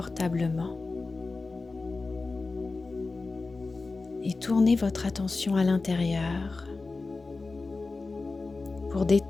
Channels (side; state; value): right; quieter; 3.7 dB